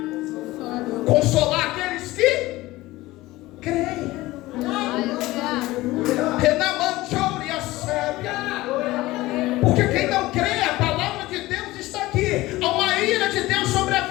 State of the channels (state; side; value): quieter; right; 18.5 dB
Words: Consolar aqueles que creem. Porque quem não crê, a palavra de Deus está aqui. Há uma ira de Deus sobre a